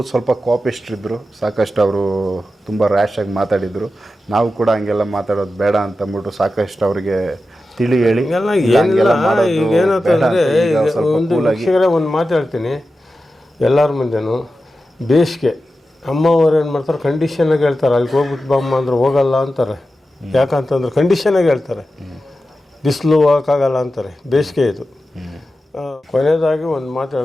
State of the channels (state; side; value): normal; both; correlation 0.92